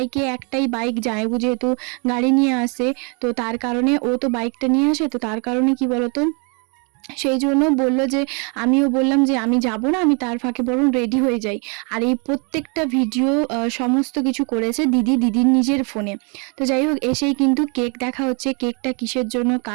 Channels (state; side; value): quieter; left; 35.0 dB